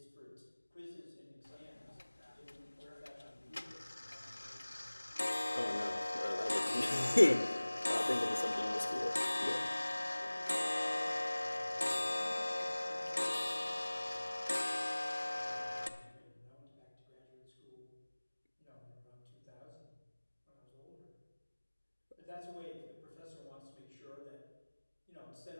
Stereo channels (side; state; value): both; inverted; correlation -1.00